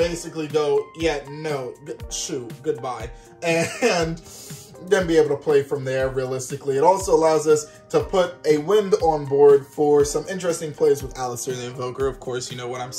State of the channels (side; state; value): both; identical; correlation 1.00